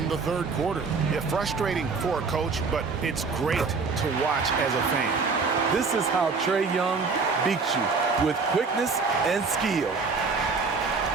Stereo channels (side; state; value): left; quieter; 4.6 dB